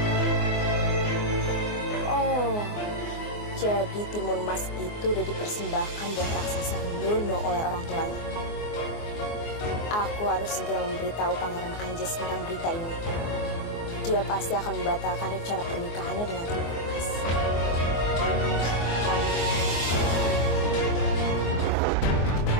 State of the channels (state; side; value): late; right; 24 ms